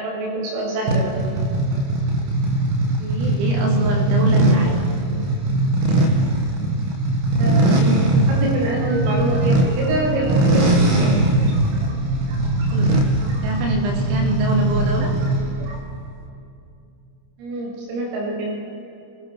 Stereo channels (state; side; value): late; left; 30 ms